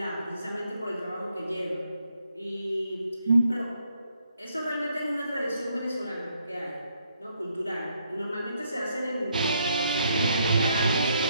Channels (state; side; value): inverted; both; correlation -0.72